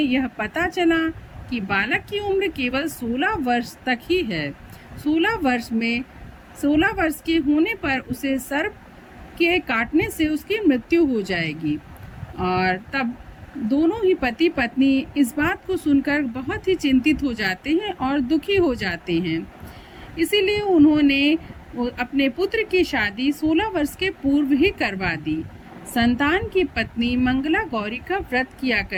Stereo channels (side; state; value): both; identical; correlation 1.00